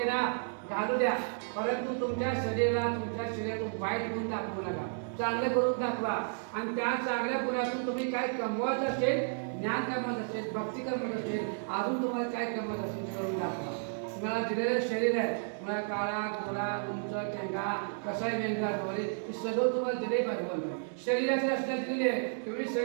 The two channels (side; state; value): left; silent; digital silence